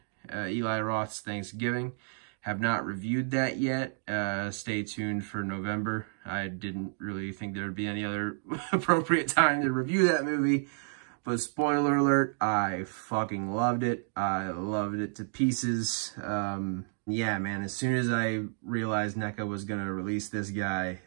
Eli Roth's Thanksgiving. Have not reviewed that yet. Stay tuned for November. I didn't really think there would be any other appropriate time to review that movie. But spoiler alert, I fucking loved it. I loved it to pieces. Yeah, man, as soon as I realized NECA was going to release this guy,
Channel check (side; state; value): left; silent; digital silence